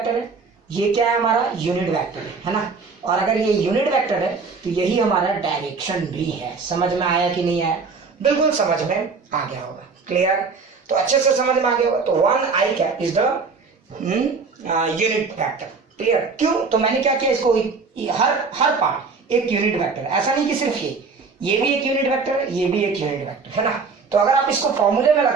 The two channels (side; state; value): left; quieter; 4.7 dB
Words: है, ये क्या है हमारा? यूनिट वेक्टर है ना। और अगर ये यूनिट वेक्टर है तो यही हमारा डायरेक्शन भी है। समझ में आया कि नहीं आया? बिल्कुल समझ में आ गया होगा। क्लियर? तो अच्छे से समझ में आ गया होगा। तो 1i cap is the unit vector. Clear? क्यों? तो मैंने क्या किया, इसको हर पार्ट एक यूनिट वेक्टर। ऐसा नहीं कि सिर्फ ये भी एक यूनिट वेक्टर है, ये भी एक यूनिट वेक्टर है ना। तो अगर आप इसको फॉर्मूले में